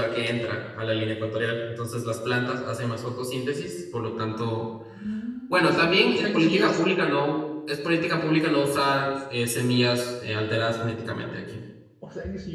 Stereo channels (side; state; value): both; identical; correlation 1.00